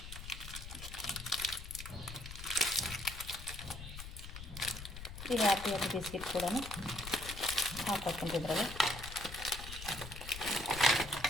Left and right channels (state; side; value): noise; left; rumble, 10 dB below the sound